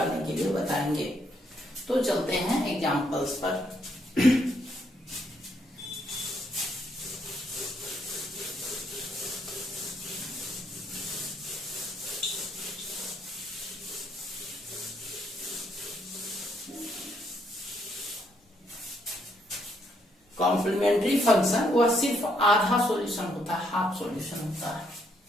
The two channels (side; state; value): both; normal; correlation 0.73